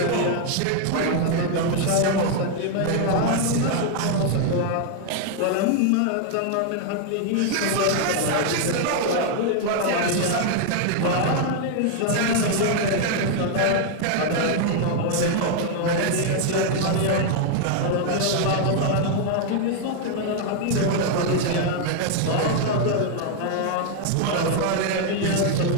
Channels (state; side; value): different; both; correlation 0.00